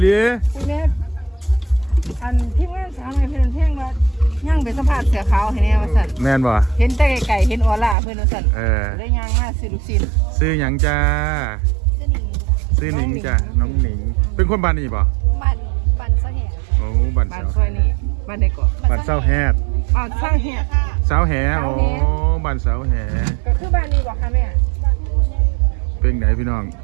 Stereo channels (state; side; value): drops out; left; at 8.0 s